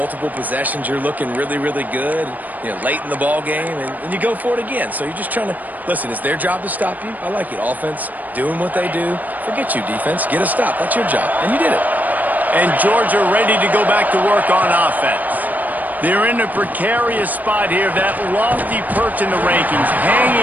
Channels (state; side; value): late; left; 0.082 ms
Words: possessions, you're looking really, really good, late in the ball game, and you go for it again. So you're just trying to, listen, it's their job to stop you. I like it. Offense, doing what they do. Forget you, defense. Get a stop. That's your job. And you did it. And Georgia ready to go back to work on offense. They're in a precarious spot here, that lofty perch in the rankings,